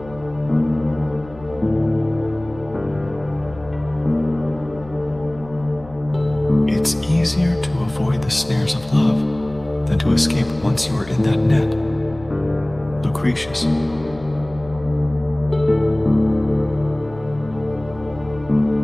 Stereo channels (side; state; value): left; noise; hum, 19 dB below the sound